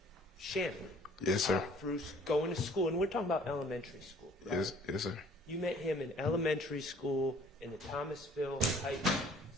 Shannon? Yes, sir. Through going to school, and we're talking about elementary school, right? Yes, yes, sir. You met him in elementary school in the Thomasville Heights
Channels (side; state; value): both; normal; correlation 0.55